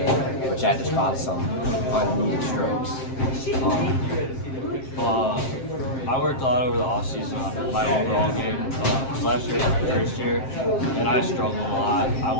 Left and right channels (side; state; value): right; late; 7.5 ms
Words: which had just caused some unneeded strokes. I worked a lot over the offseason on my overall game. Last year was my first year, and I struggled a lot. I